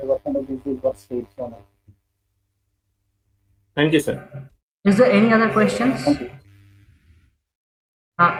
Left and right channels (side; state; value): both; identical; correlation 1.00